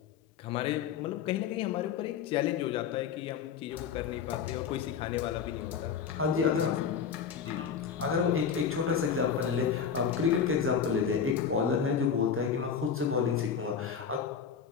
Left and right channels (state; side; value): quieter; right; 7.0 dB